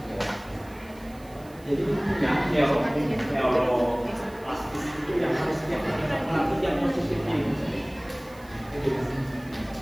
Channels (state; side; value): noise; right; hiss, 25 dB below the sound